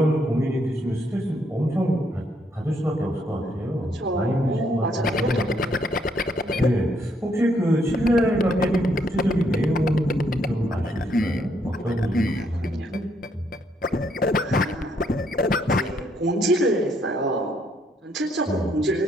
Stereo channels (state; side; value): normal; both; correlation 0.72